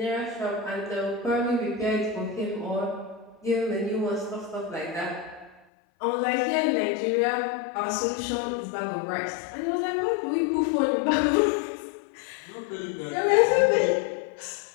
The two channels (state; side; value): drops out; right; at 5.6 s